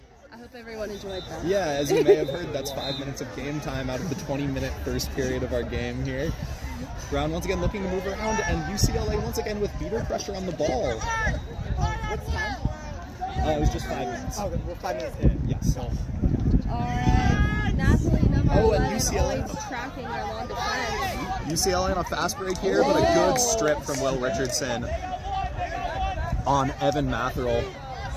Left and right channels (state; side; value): identical; both; correlation 1.00